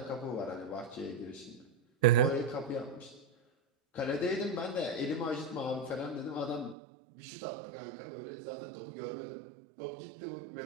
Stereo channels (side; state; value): left; drops out; at 6.8 s